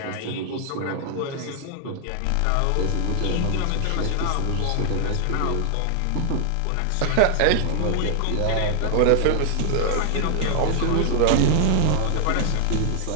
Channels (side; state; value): both; different; correlation 0.00